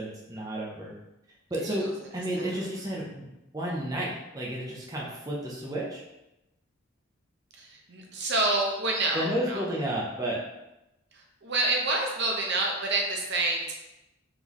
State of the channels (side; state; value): both; normal; correlation 0.20